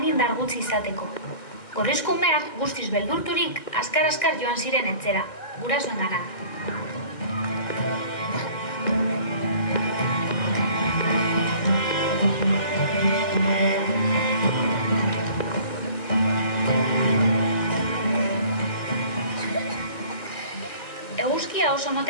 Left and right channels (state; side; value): late; right; 1.9 ms